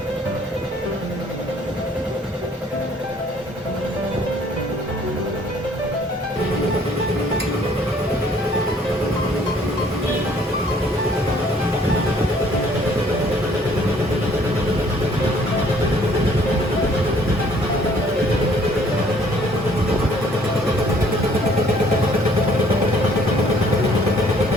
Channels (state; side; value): normal; both; correlation 0.60